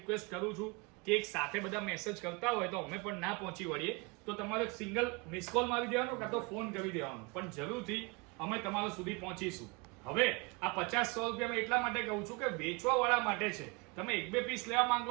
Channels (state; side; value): quieter; left; 28.5 dB